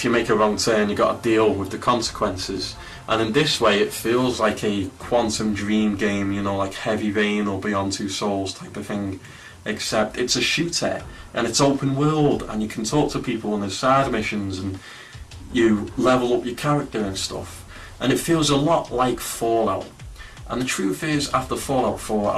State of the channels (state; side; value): identical; both; correlation 1.00